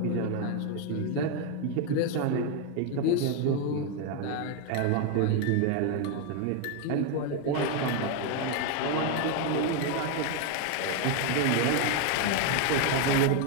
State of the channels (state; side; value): different; both; correlation 0.01